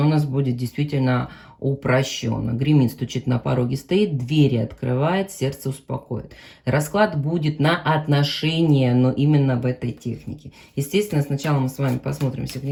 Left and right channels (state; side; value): identical; both; correlation 1.00